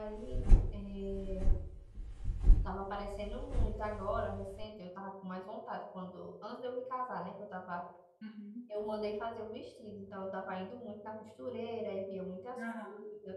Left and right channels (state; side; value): identical; both; correlation 1.00